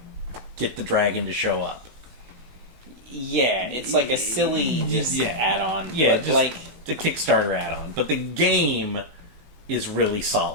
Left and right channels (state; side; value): late; left; 17 ms